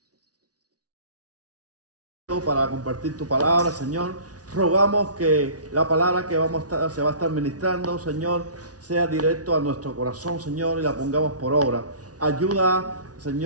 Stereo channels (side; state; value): left; late; 0.68 ms